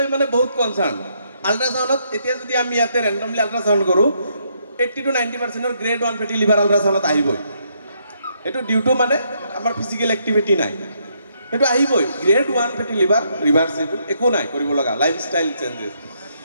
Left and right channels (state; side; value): inverted; both; correlation -0.74